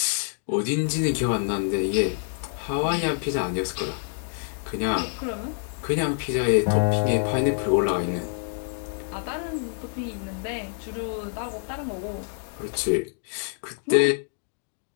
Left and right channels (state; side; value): silent; right; digital silence